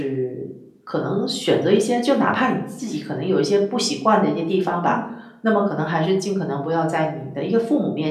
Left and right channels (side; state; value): both; identical; correlation 1.00